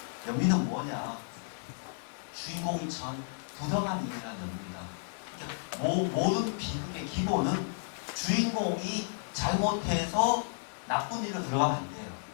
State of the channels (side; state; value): right; silent; digital silence